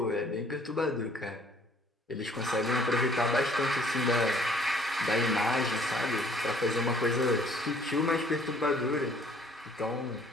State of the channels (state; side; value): normal; both; correlation 0.58